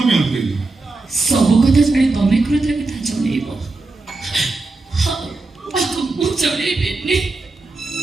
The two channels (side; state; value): left; quieter; 3.4 dB